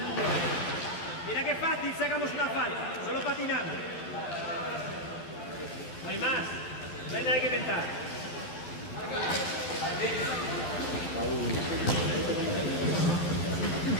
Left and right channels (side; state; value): right; late; 12 ms